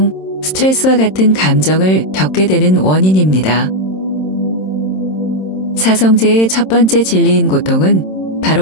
스트레스와 같은 감정을 겪게 되는 원인입니다. 사성제의 첫 번째 진리인 고통은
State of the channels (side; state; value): right; late; 27 ms